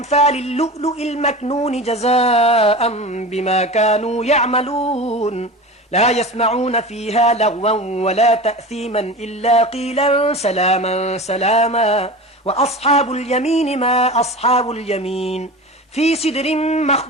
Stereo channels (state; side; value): normal; both; correlation 0.31